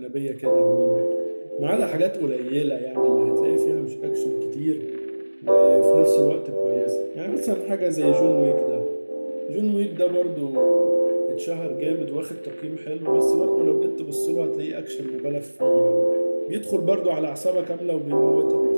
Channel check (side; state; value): both; inverted; correlation -1.00